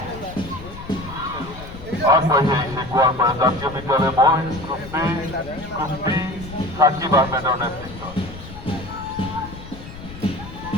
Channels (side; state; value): left; noise; rumble, 14 dB below the sound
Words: আগবাড়ি আইছে গোয়ালপাড়া জাতীয় বিদ্যালয় বয়েজ গ্রুপ B সাকিব আহমেদের নেতৃত্ব।